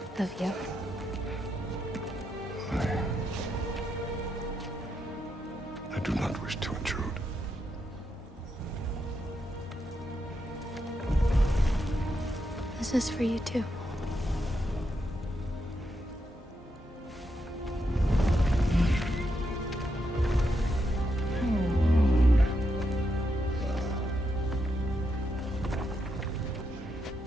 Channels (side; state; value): both; normal; correlation 0.82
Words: of you. I do not wish to intrude. This is for you too.